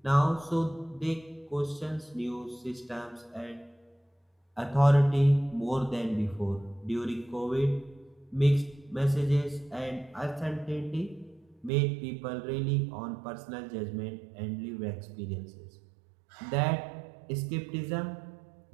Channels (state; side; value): drops out; left; at 11.7 s